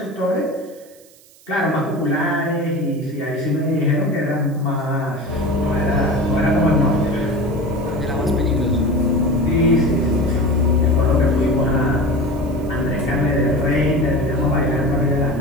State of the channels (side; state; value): right; noise; hiss, 26 dB below the sound